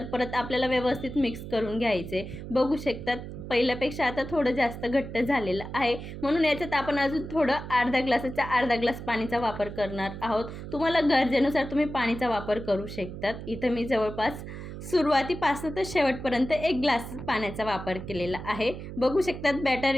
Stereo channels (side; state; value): right; noise; hum, 10 dB below the sound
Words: परत आपल्याला व्यवस्थित मिक्स करून घ्यायचे. बघू शकतात पहिल्यापेक्षा आता थोडं जास्त घट्ट झालेलं आहे, म्हणून याच्यात आपण अजून थोडं अर्धा ग्लासाचा अर्धा ग्लास पाणीचा वापर करणार आहोत. तुम्हाला गरजेनुसार तुम्ही पाणीचा वापर करू शकतात. इथं मी जवळपास सुरुवातीपासून तर शेवटपर्यंत 1 ग्लास पाण्याचा वापर केलेला आहे. बघू शकतात बॅटर